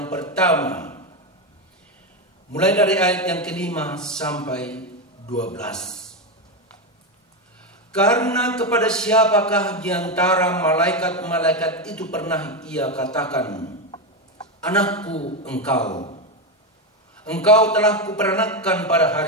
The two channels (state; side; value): normal; both; correlation 0.11